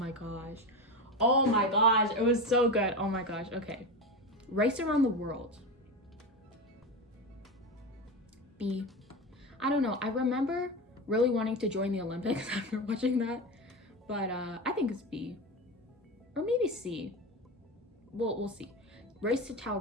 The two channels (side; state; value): both; normal; correlation 0.21